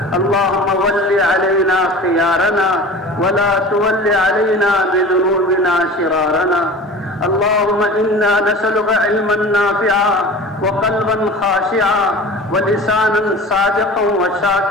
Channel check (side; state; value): both; normal; correlation 0.38